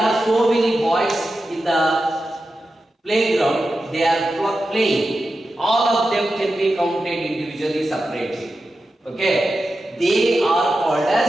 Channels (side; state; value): both; normal; correlation 0.91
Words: so many boys in the playground, they are playing. All of them can be counted individually, separately. Okay, they are called